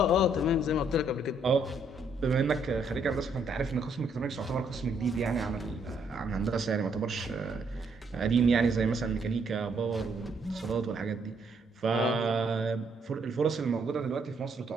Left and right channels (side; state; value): both; normal; correlation 0.71